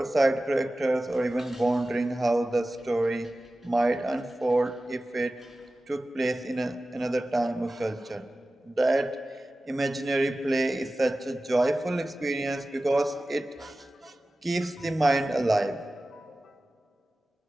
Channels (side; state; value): both; normal; correlation 0.95